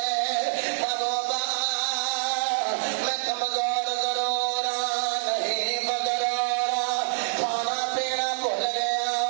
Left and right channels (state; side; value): silent; left; 61 dB below the other